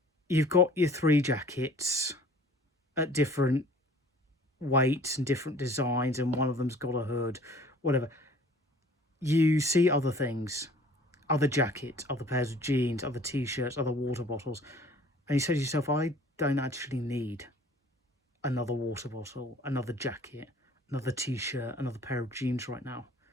you've got your 3 jackets at different weights and different designs, and one of them's got a hood, whatever. You see other things, other jackets, other pairs of jeans, other t-shirts, other water bottles, and you say to yourself, I don't actually need another water bottle, another jacket, another t-shirt, another pair of jeans right now.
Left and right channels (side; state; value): both; normal; correlation 0.51